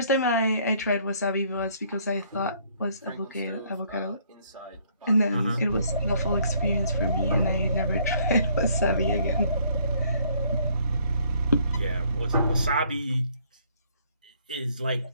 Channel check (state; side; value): inverted; both; correlation -0.64